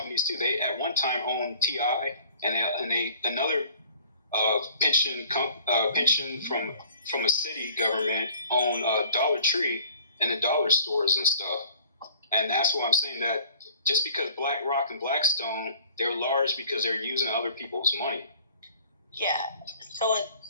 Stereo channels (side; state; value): both; inverted; correlation -0.51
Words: too. They at one time owned TI, and another pension from a city government owned Dollar Tree and the dollar stores and stuff. And that's why I'm saying that just because BlackRock and Blackstone, they're large because they're using other people's money. Yeah, so is